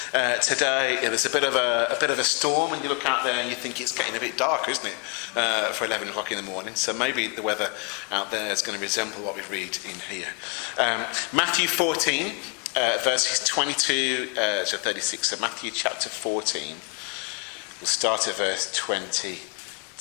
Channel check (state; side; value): quieter; right; 31.1 dB